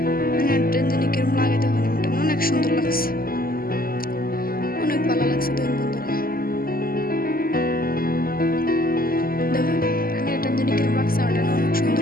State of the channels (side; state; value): right; late; 0.42 ms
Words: ওটা জানি কিরম লাগে দেখুন আমার অনেক সুন্দর লাগছে অনেক ভালো লাগছে দেন বন্ধুরা দেখুন আমি ওটা জানি কিরম লাগছে আমার অনেক